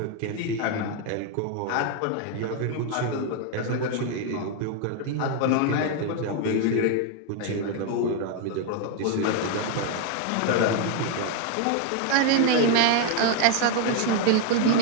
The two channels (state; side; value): different; both; correlation 0.01